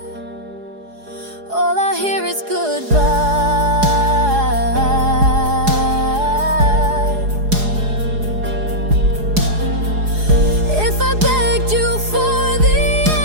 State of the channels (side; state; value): left; late; 4.8 ms